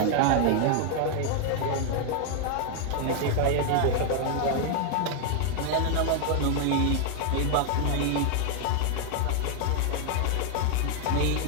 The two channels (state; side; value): different; both; correlation 0.00